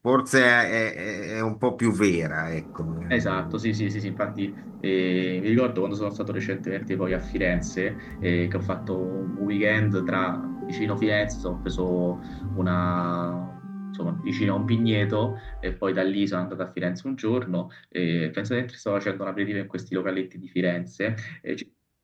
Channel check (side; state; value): both; identical; correlation 1.00